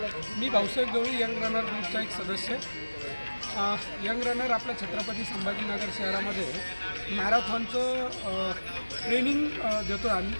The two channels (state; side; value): inverted; both; correlation -1.00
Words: मी भाऊसाहेब गवळी यंग रनर ग्रुपचा एक सदस्य. यंग रनर आपल्या छत्रपती संभाजीनगर शहरामध्ये मॅरेथॉनचं ट्रेनिंग देतो आम्ही